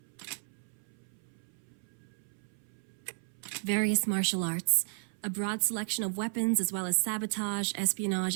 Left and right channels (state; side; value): silent; left; 55 dB below the other